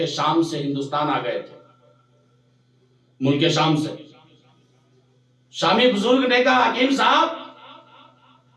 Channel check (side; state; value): both; identical; correlation 1.00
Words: شام سے ہندوستان آ گئے تھے، ملک شام سے۔ شامی بزرگ نے کہا حکیم صاحب